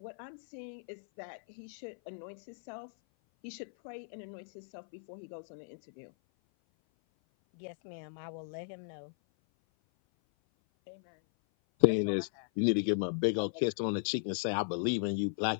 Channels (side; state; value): right; silent; 54 dB below the other